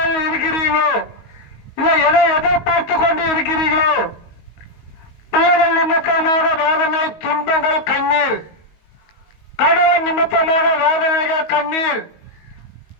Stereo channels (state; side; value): late; right; 19 ms